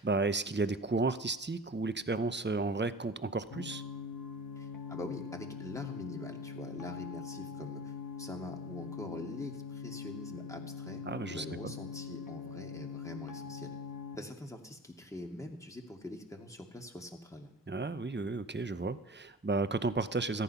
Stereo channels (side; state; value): both; normal; correlation 0.37